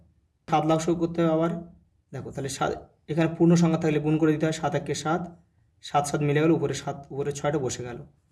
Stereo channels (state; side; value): identical; both; correlation 1.00